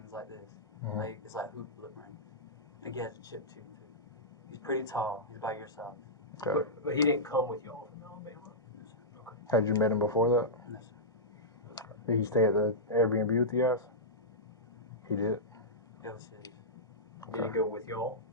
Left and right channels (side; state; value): both; normal; correlation -0.13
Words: like this. Mhm. Like it's like hoop lip rings. I think he has a chip tooth too. He's pretty tall. He's about your size. Okay. But he didn't come with y'all from Alabama. No, sir. Okay. Had you met him before that? No, sir. Did he stay at the Airbnb with you guys? He did? It was his. Did he go with y'all?